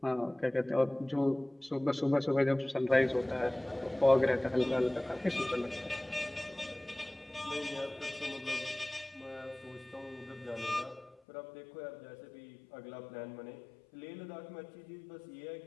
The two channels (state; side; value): drops out; right; at 11.2 s